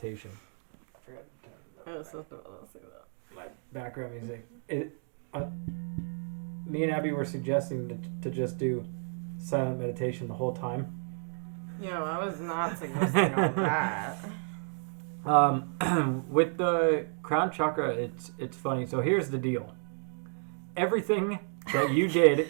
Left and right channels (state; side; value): silent; left; 55 dB below the other